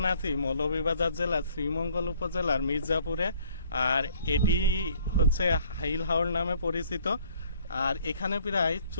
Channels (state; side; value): inverted; both; correlation -0.58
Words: আছি মৌলভীবাজার জেলার শ্রীমঙ্গল উপজেলার মির্জাপুরে। আর এটি হচ্ছে হাইলাহর নামে পরিচিত। আর এখানে প্রায়